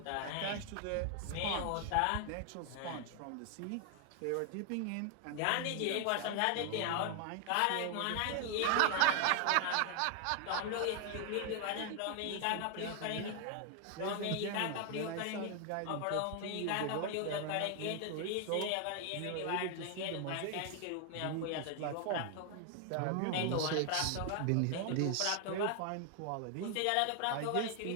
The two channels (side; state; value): both; different; correlation 0.00